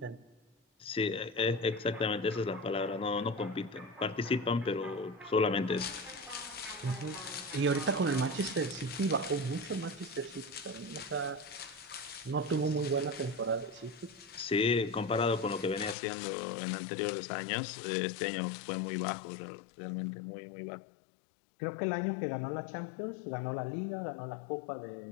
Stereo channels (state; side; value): drops out; right; at 16.0 s